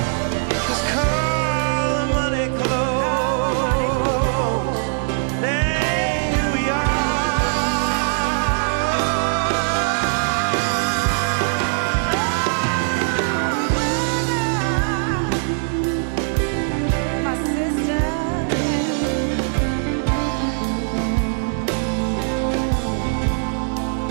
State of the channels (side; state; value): left; silent; digital silence